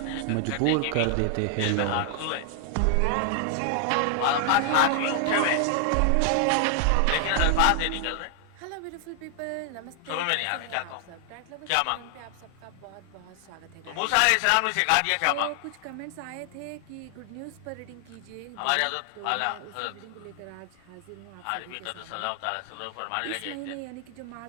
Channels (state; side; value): different; both; correlation 0.00